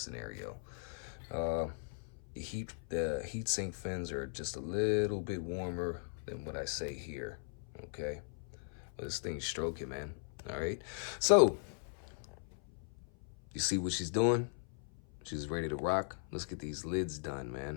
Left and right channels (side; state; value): right; silent; 52 dB below the other